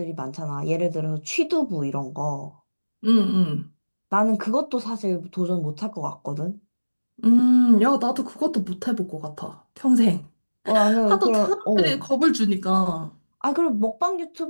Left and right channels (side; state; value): both; inverted; correlation -1.00